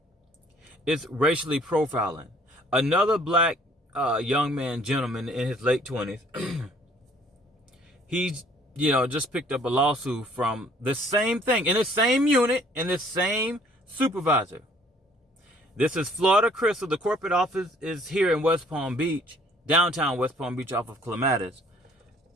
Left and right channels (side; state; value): both; normal; correlation 0.58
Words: It's racially profiling. Another black gentleman in his late 20s, he's, just picked up a lawsuit from the same thing, in the same unit, in the same supervisor. This is Florida Crystal. The corporate office is here in West Palm Beach, downtown West Palm Beach, off of Clematis.